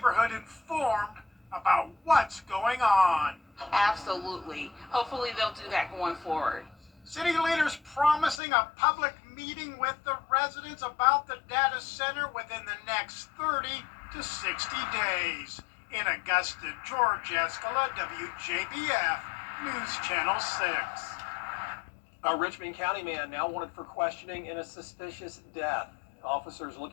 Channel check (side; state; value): right; drops out; at 8.4 s